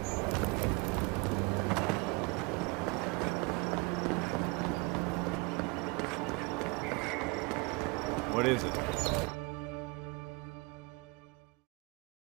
What is it?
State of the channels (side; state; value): left; quieter; 27.1 dB